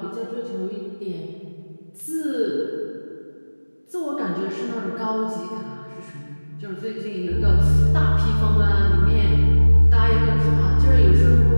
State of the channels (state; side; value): inverted; both; correlation -1.00